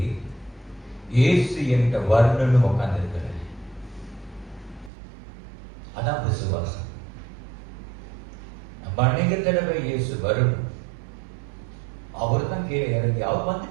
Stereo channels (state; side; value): drops out; left; at 4.9 s